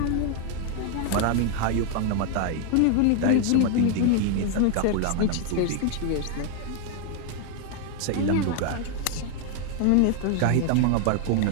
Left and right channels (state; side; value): different; both; correlation 0.00